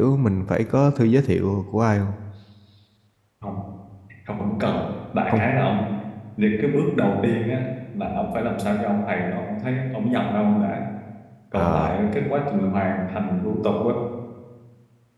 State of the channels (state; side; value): identical; both; correlation 1.00